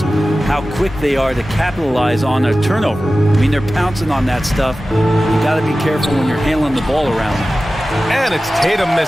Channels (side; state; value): both; normal; correlation 0.95